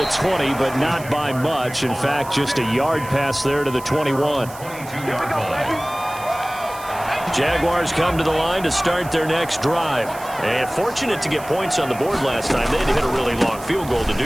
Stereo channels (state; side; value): noise; right; hiss, 17 dB below the sound